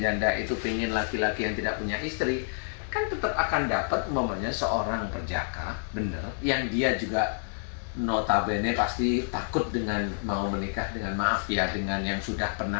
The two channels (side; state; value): right; silent; 59 dB below the other